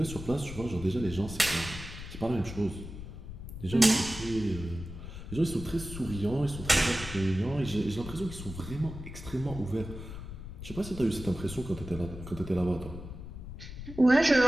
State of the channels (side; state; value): left; noise; rumble, 10 dB below the sound